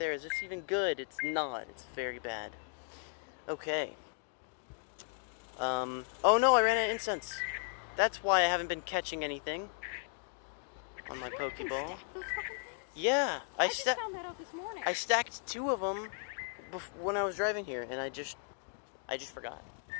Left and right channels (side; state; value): right; silent; 54 dB below the other